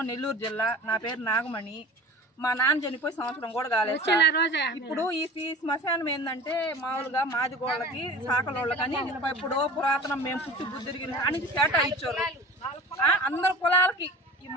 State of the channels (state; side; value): normal; both; correlation 0.39